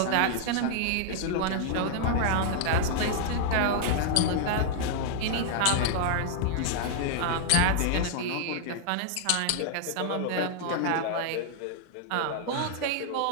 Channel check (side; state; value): both; different; correlation -0.01